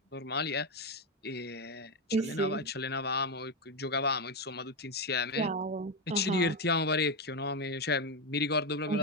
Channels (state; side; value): normal; both; correlation 0.09